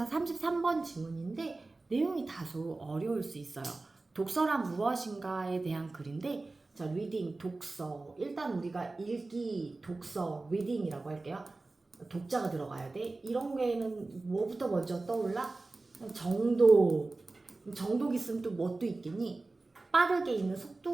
33번 지문인데 내용이 다소 어려울 수 있어요. 독서란 무엇인가에 대한 글인데, 자, 리딩, 독서. 일단 우리가 읽기, 독서, 리딩이라고 할게요. 독자가 들어가야 돼. 이런 게는 뭐부터 먼저 떠올라? 정독. 정독 있으면 또 뭣도 있겠니? 빠르게 읽는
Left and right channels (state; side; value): quieter; left; 3.3 dB